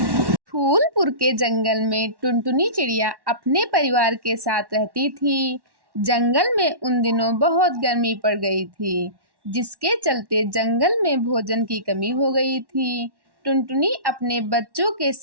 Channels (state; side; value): late; left; 1.1 ms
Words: फूलपुर के जंगल में टुनटुनी चिड़िया अपने परिवार के साथ रहती थी। जंगल में उन दिनों बहुत गर्मी पड़ गई थी, जिसके चलते जंगल में भोजन की कमी हो गई थी। टुनटुनी अपने बच्चों के